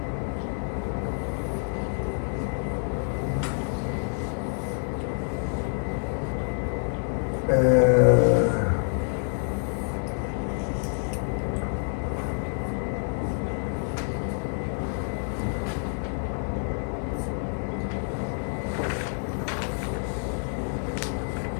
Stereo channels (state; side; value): silent; right; 60 dB below the other